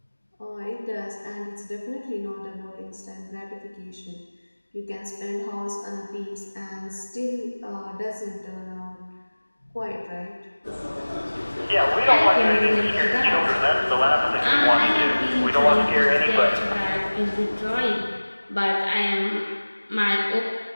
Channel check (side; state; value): both; inverted; correlation -1.00